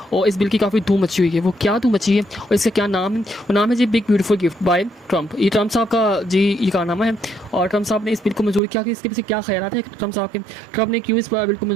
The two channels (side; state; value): left; drops out; at 8.6 s